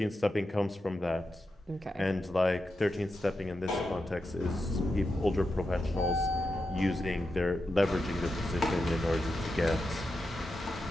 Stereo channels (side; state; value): both; normal; correlation 0.88